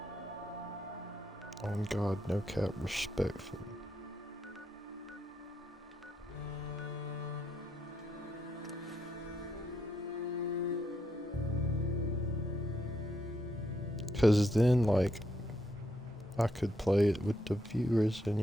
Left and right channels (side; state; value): both; normal; correlation 0.79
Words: On God, no cap, respectfully. Cause then, like, I could play it with the viewers and